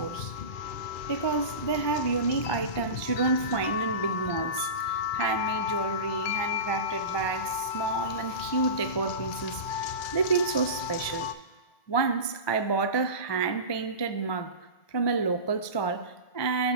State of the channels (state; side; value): late; right; 1.2 ms